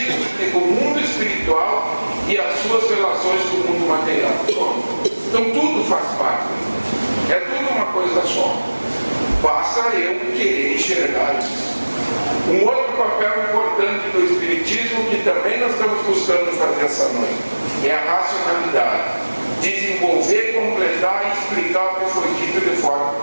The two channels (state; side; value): inverted; both; correlation -1.00